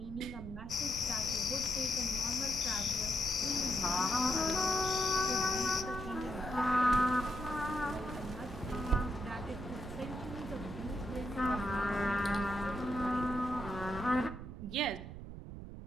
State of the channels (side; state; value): right; noise; rumble, 10 dB below the sound